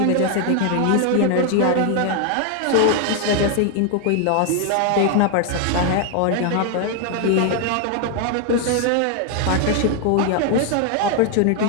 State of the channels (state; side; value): different; both; correlation 0.00